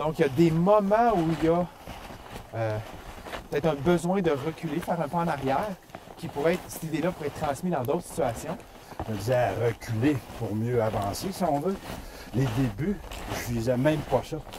il y a des moments où il y a peut-être un besoin de reculer, faire un pas en arrière, qui pourrait être, cette idée-là pourrait être transmise dans d'autres situations. Je me disais à reculer pour mieux avancer, si on veut. Les débuts, je visais même pas ça.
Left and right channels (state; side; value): identical; both; correlation 1.00